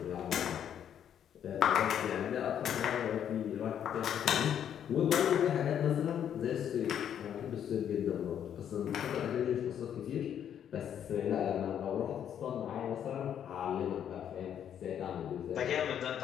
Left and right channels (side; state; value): right; quieter; 9.3 dB